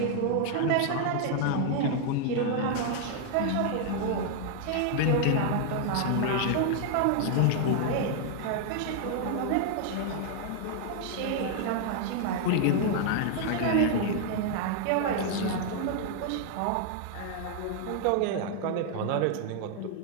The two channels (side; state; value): both; different; correlation 0.00